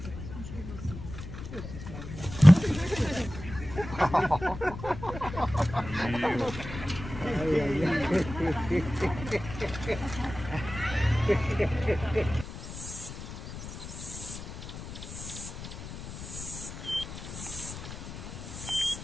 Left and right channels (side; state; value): left; noise; rumble, 10 dB below the sound